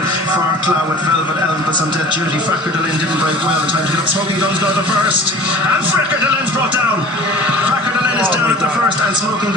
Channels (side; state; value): both; normal; correlation 0.43